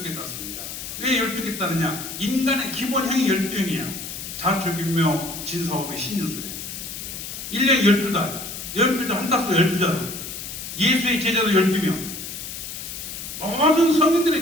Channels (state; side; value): noise; left; hiss, 8 dB below the sound